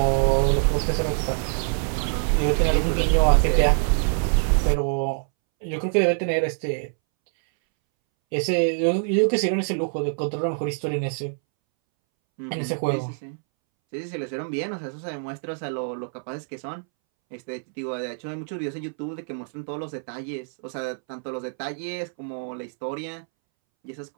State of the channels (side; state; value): left; silent; 62 dB below the other